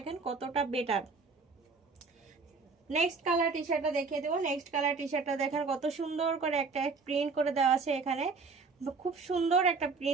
কতটা বেটার। নেক্সট কালার টি শার্টটা দেখিয়ে দেবো। নেক্সট কালার টি শার্টটা দেখেন কত সুন্দর করে একটা প্রিন্ট করে দেওয়া আছে, এখানে খুব সুন্দর একটা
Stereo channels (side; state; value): left; quieter; 4.5 dB